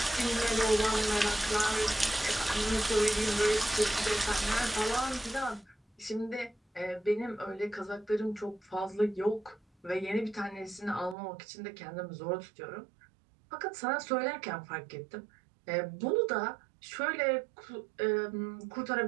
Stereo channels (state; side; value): drops out; left; at 11.2 s